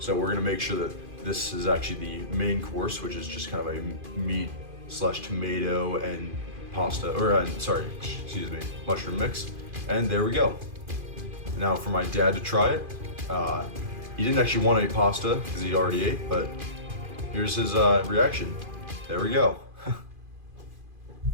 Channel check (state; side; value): late; left; 2.5 ms